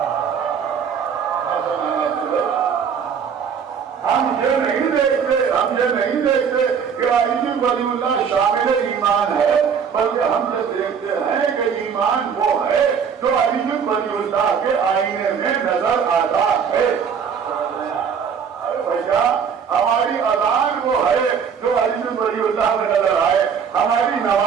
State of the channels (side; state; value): left; quieter; 6.9 dB